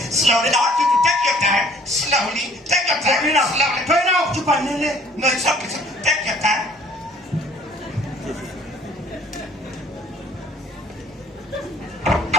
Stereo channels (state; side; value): normal; both; correlation 0.55